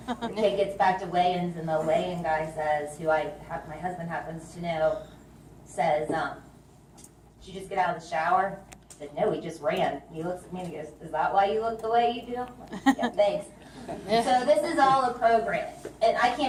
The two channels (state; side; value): identical; both; correlation 1.00